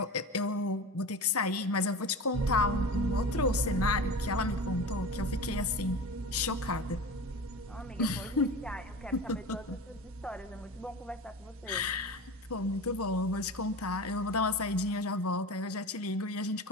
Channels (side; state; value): both; normal; correlation 0.31